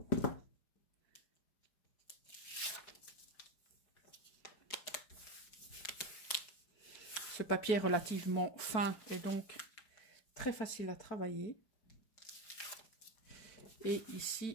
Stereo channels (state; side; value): late; right; 4.5 ms